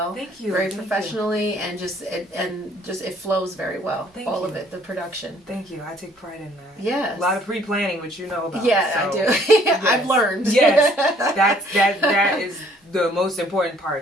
Thank you. Very professionally, and it flows very well. All of it, the production. Thank you. I take pride in that. Yes. A lot of pre-planning, which you know about. Yeah, so, I do. Yes. I've learned. Yes, that is the most important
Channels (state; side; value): normal; both; correlation 0.60